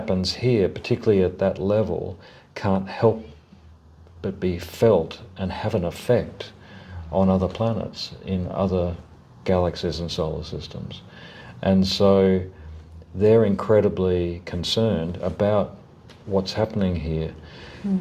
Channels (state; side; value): identical; both; correlation 1.00